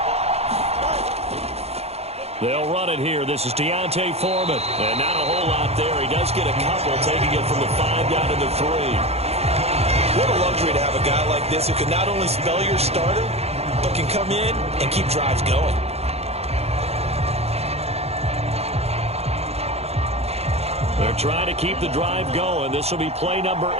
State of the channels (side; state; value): left; late; 0.30 ms